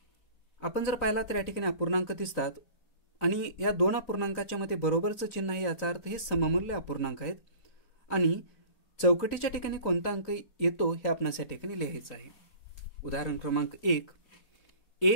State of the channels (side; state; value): right; late; 4.0 ms